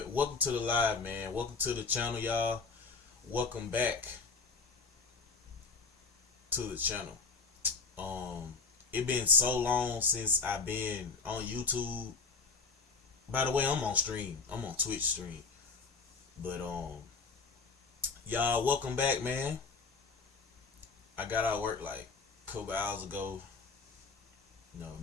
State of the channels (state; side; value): quieter; right; 4.6 dB